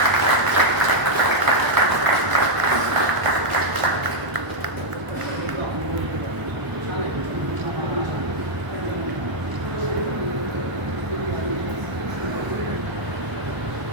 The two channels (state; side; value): late; left; 1.0 ms